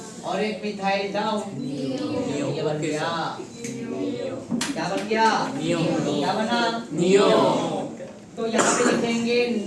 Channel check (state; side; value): identical; both; correlation 1.00